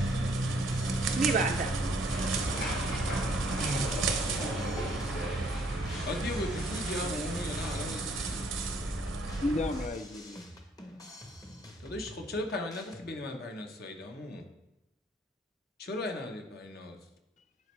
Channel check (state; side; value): normal; both; correlation 0.64